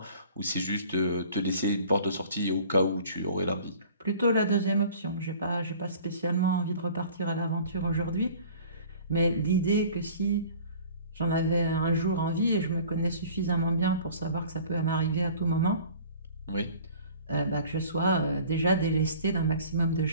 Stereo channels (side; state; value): both; inverted; correlation -0.47